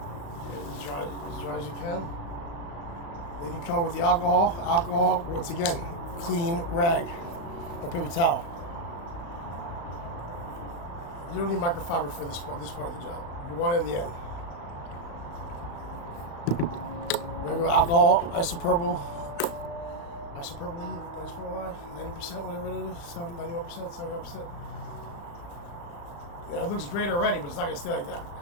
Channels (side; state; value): right; late; 35 ms